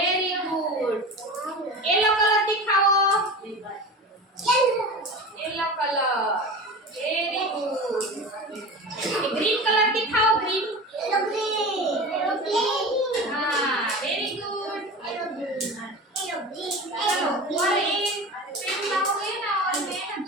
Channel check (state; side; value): normal; both; correlation 0.31